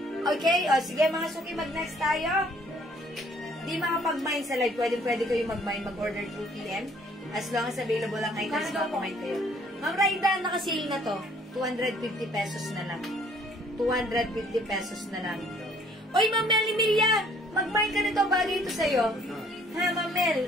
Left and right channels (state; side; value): normal; both; correlation 0.60